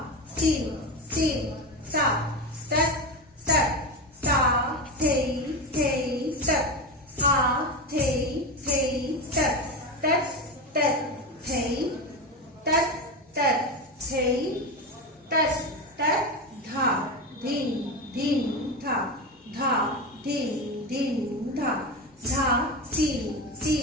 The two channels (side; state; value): both; normal; correlation 0.19